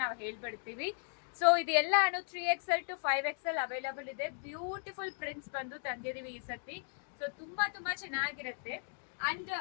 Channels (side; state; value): right; silent; digital silence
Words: ನಾವು ಹೇಳ್ಬಿಡ್ತೀವಿ. ಸೊ ಇದು ಎಲ್ಲ 3XL to 5XL ಅವೈಲಬಲ್ ಇದೆ. ಬ್ಯೂಟಿಫುಲ್ ಪ್ರಿಂಟ್ಸ್ ಬಂದು ತಂದಿದೀವಿ ಈ ಸತಿ. ಸೊ ತುಂಬಾ ಚೆನ್ನಾಗಿರುತ್ತೆ. ಅಂಡ್